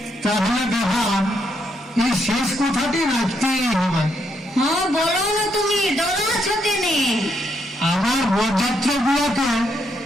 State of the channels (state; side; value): normal; both; correlation 0.77